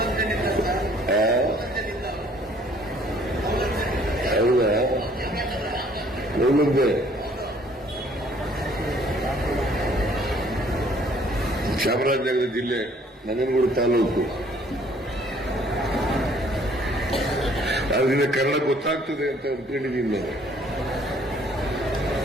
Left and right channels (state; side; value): normal; both; correlation 0.60